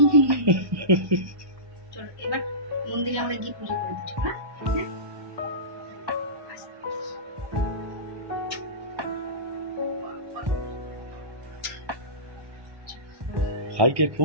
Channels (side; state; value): left; late; 1.2 ms